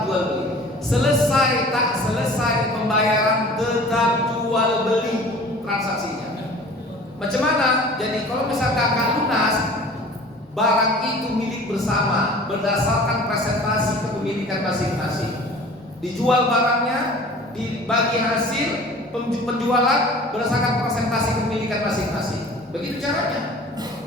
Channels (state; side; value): normal; both; correlation 0.45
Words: jual beli. Selesai tak selesai pembayaran tetap jual beli transaksinya. Macam mana? Jadi kalau misalkan akad lunas, barang itu milik bersama berdasarkan presentasi kepemilikan masing-masing. Dijual barangnya, dibagi hasil penjualan berdasarkan presentasi kepemilikan masing-masing. Begitu caranya.